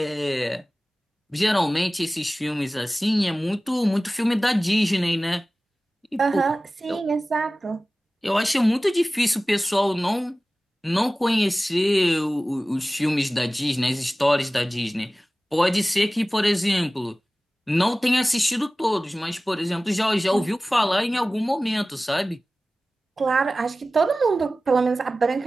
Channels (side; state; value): both; normal; correlation 0.97